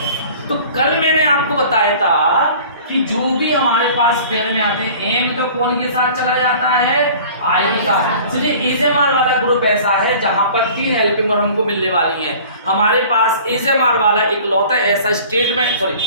हैं। तो कल मैंने आपको बताया था कि जो भी हमारे पास पेयर में आते हैं, एम तो कौन के साथ चला जाता है? आई के साथ। चलिए इज एम आर वाला ग्रुप ऐसा है जहां पर 3 हेल्पिंग वर्ब हमको मिलने वाली हैं। हमारे पास इज एम आर वाला इकलौता ऐसा स्टेटमेंट, सॉरी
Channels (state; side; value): inverted; both; correlation -0.45